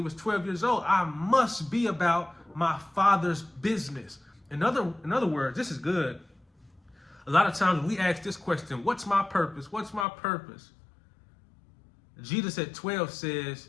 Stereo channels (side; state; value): right; drops out; at 10.1 s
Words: was 12 years old: I must be about my Father's business. In other words, this is good. A lot of times we ask this question: what's my purpose? What's my purpose? Jesus at 12 says,